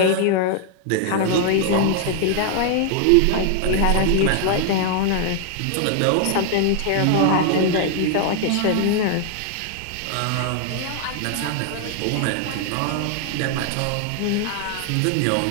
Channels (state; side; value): different; both; correlation 0.00